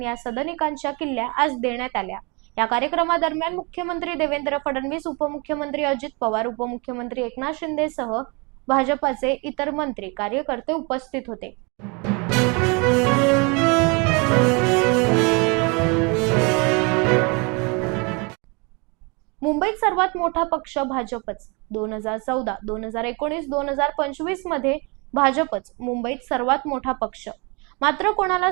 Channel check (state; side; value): quieter; left; 30.5 dB